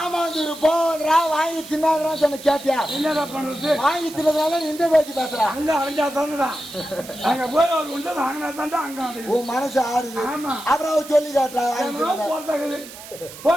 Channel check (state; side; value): noise; right; hiss, 15 dB below the sound